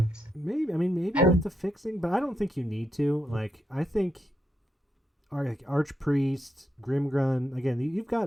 Maybe with And the fixing, but I don't think you need to. Like, I think Archpriest, Grimgrun. Again, you've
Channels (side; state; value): both; normal; correlation 0.82